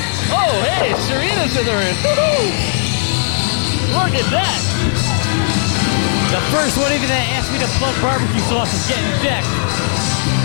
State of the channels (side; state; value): right; silent; digital silence